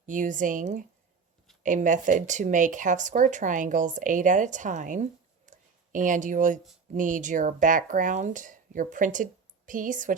using a method to make half square triangles 8 at a time. And you will need your background, your printed piece,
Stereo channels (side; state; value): left; quieter; 5.3 dB